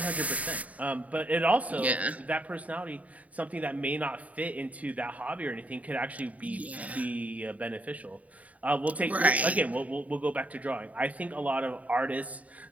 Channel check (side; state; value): left; late; 0.070 ms